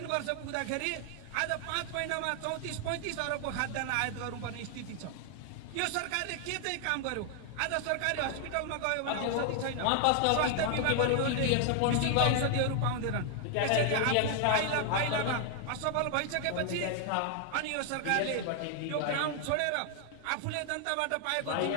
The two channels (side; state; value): both; different; correlation 0.00